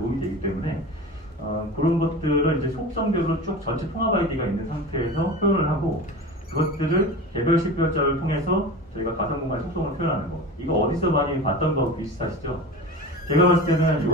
되기 때문에 그런 것들을 이제 속성별로 쭉 전체 통합 아이디가 있는 상태에서 표현을 하고, 그것들을 개별 식별자를 통해서 저희가 가상공간의 속성을 표현하는 거. 이거 어디서 많이 봤던 거 비슷하시죠? 제가 봤을 때는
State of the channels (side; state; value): both; normal; correlation 0.32